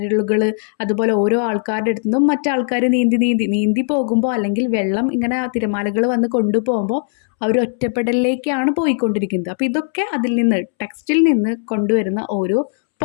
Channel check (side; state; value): right; silent; 67 dB below the other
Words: അതുപോലെ ഓരോ ആൾക്കാരുടെ അടുത്തു നിന്നും മറ്റാൾക്കാർ നീന്തി പോകുമ്പോൾ, അല്ലെങ്കിൽ വെള്ളം ഇങ്ങനെ തിരമാലകൾ വന്ന് കൊണ്ടുപോകുമ്പോൾ അവർ ഒറ്റപ്പെടലിലേക്കാണ് പോയിക്കൊണ്ടിരിക്കുന്നത്. അപ്പോൾ ഇതൊക്കെ അതിൽ നിന്ന്, ടെക്സ്റ്റിൽ നിന്ന് കൊണ്ടുവരുന്ന ഓരോ